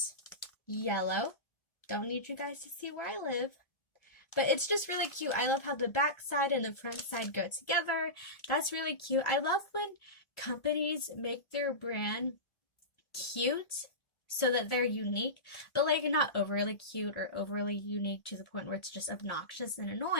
yellow. Don't need you guys to see where I live. But it's just really cute. I love how the back side and the front side go together. That's really cute. I love when companies make their brand cute so that they're unique, but like not overly cute or overly unique to the point where it's just obnoxious and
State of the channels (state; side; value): late; right; 1.4 ms